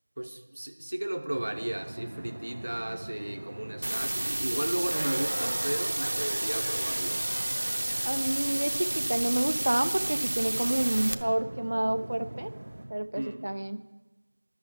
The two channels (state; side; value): inverted; both; correlation -1.00